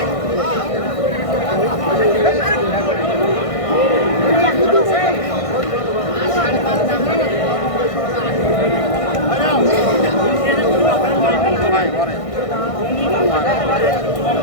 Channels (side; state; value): right; late; 1.6 ms